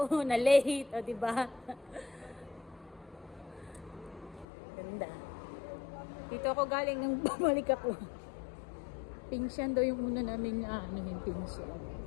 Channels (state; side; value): drops out; right; at 4.5 s